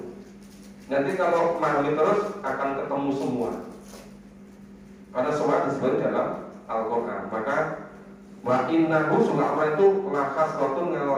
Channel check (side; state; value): both; identical; correlation 1.00